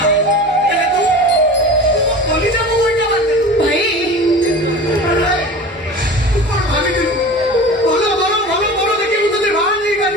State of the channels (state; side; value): normal; both; correlation 0.35